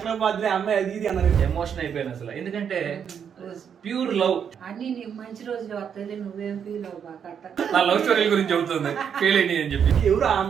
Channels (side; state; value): left; quieter; 7.7 dB